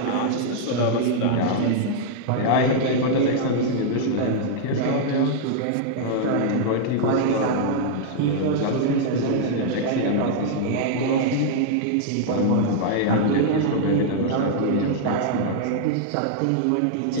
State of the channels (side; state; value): both; different; correlation -0.01